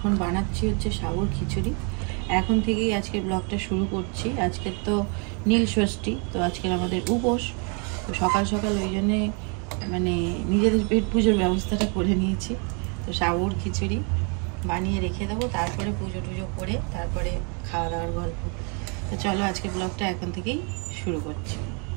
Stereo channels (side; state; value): left; quieter; 36.4 dB